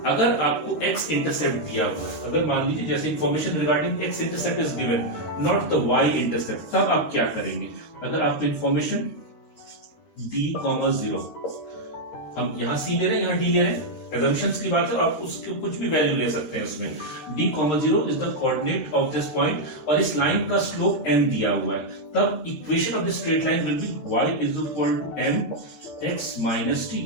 अगर आपको x इंटरसेप्ट दिया हुआ है, अगर मान लीजिए जैसे information regarding x intercept is given, not the y intercept, तब आप क्या करेंगे? अगर आपको इंफॉर्मेशन d, 0, हम यहां c ले रहे हैं, यहां d ले रहे हैं, assumptions की बात है, आप उसके कुछ भी वैल्यू ले सकते हैं उसमें। d, 0 is the coordinate of this point और इस लाइन का स्लोप m दिया हुआ है, तब equation of this straight line will be y is equal to m x minus t।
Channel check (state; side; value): late; right; 12 ms